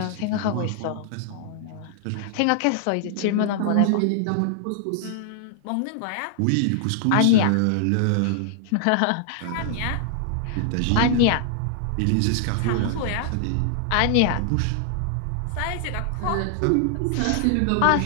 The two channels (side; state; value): both; different; correlation -0.01